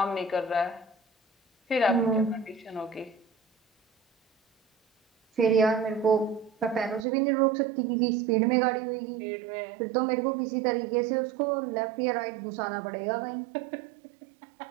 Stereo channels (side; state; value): left; drops out; at 7.1 s